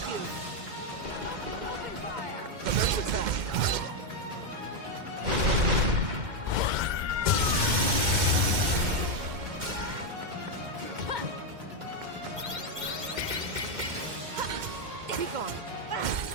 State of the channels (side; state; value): left; late; 2.1 ms